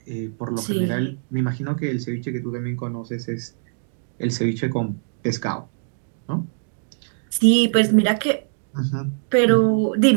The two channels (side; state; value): left; silent; digital silence